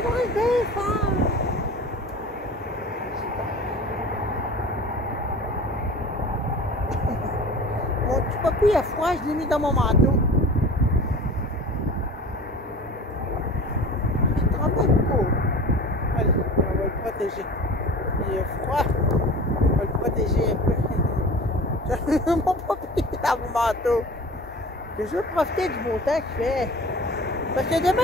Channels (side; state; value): both; normal; correlation 0.39